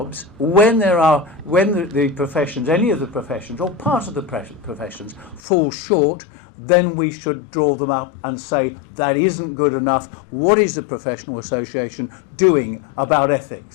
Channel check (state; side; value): drops out; right; at 5.4 s